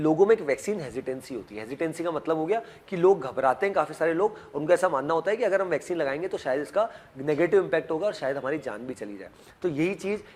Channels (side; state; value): both; identical; correlation 1.00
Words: में एक वैक्सीन हेजिटेंसी होती है। हेजिटेंसी का मतलब हो गया कि लोग घबराते हैं, काफ़ी सारे लोग, उनका ऐसा मानना होता है कि अगर हम वैक्सीन लगाएंगे तो शायद इसका नेगेटिव इंपैक्ट होगा और शायद हमारी जान भी चली जाए। तो यही चीज़